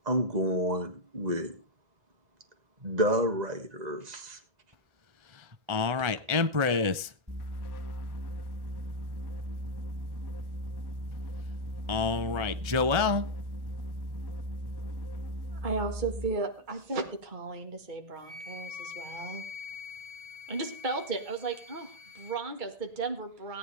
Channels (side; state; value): left; late; 1.4 ms